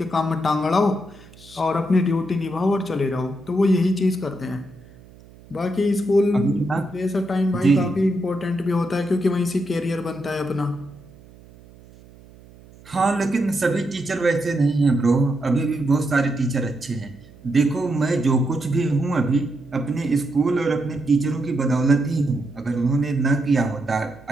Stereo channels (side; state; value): right; noise; hum, 23 dB below the sound